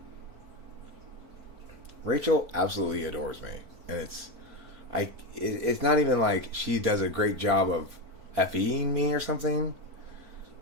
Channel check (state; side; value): late; left; 4.5 ms